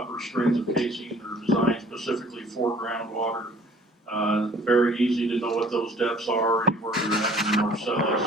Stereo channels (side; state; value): both; normal; correlation 0.53